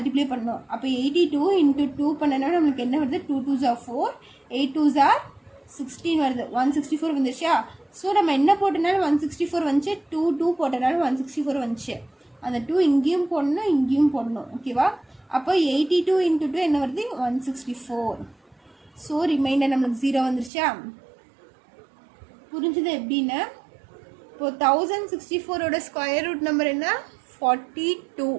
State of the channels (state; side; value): drops out; left; at 20.5 s